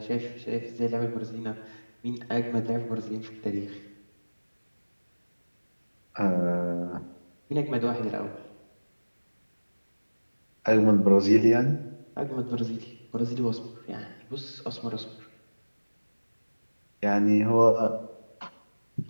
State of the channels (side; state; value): both; inverted; correlation -1.00